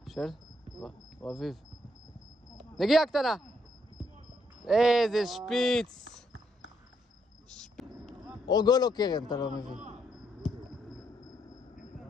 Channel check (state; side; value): normal; both; correlation 0.75